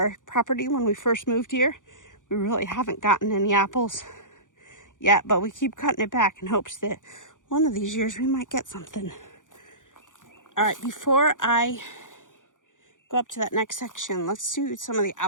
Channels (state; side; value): late; right; 0.87 ms